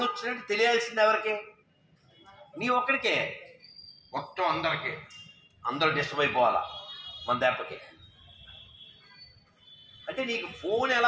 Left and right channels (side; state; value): both; identical; correlation 1.00